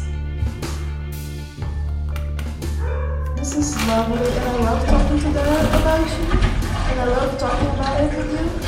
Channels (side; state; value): both; identical; correlation 1.00